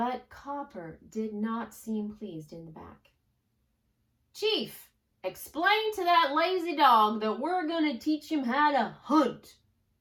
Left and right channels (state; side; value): identical; both; correlation 1.00